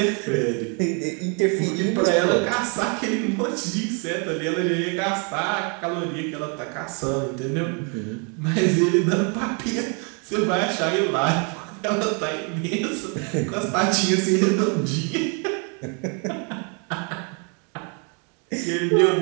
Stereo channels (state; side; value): quieter; left; 36.8 dB